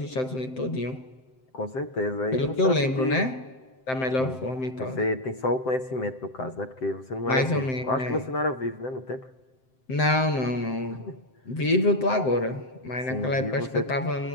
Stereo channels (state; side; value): late; right; 7.7 ms